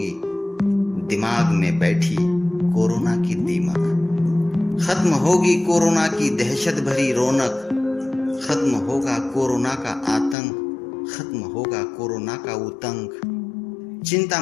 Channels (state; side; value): drops out; right; at 10.4 s